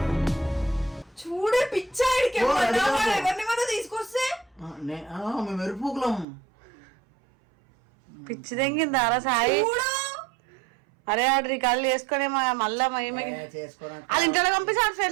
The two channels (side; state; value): left; drops out; at 6.2 s